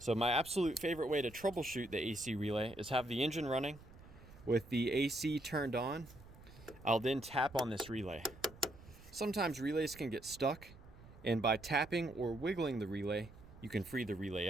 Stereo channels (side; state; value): right; noise; rumble, 20 dB below the sound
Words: my absolute favorite way to troubleshoot the AC relay is have the engine running with the AC turned on. I'll then tap on this relay. Sometimes relays can get stuck, and by tapping or wiggling the relay, you can free the relay